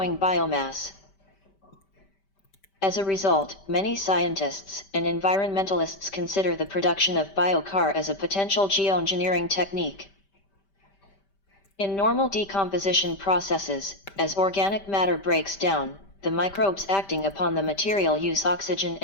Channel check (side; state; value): right; late; 5.1 ms